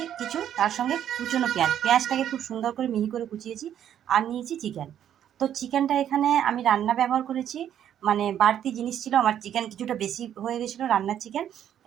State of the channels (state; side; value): quieter; left; 10.2 dB